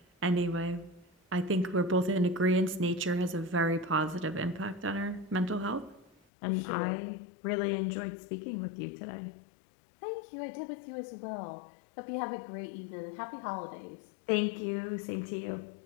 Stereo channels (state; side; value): drops out; right; at 6.2 s